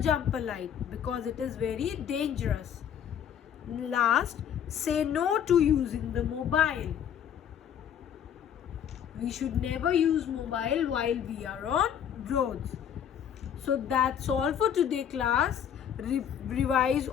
jump a light because it is very dangerous. Last, say no to using the mobile. We should never use mobile while we are on roads. So that's all for today, class. Revise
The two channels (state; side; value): quieter; right; 8.9 dB